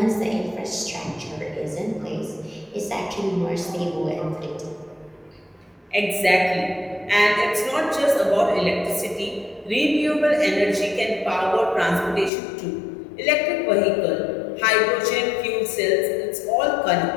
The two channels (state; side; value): drops out; right; at 12.3 s